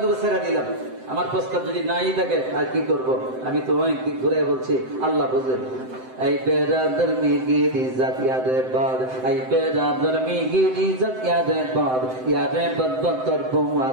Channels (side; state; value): left; late; 7.8 ms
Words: দুটো ছেড়ে দিলাম, আমার প্রস্তাব যদি নাই থাকে আর কি করব? আমি তো অনেক দিক ঘুরে বলছি, আল্লাহ বুঝেন। এই বেরাদর মিগির ইজ্জত ইয়াদে বাদ, এই বেরাদর মিগির ইজ্জত ইয়াদে বাদ, ইয়াদে বদ তোর